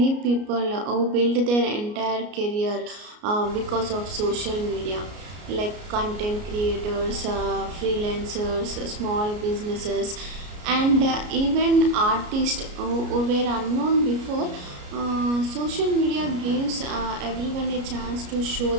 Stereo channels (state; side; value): late; left; 33 ms